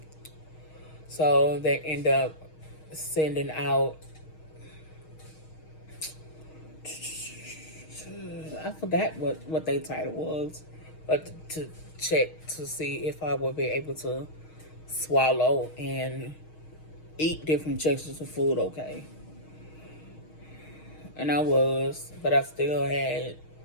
So they end up sending out, I forgot what their title was, but to check to see if I would be able to swallow and eat different textures of food okay. And I was, but I still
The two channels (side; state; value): right; late; 6.4 ms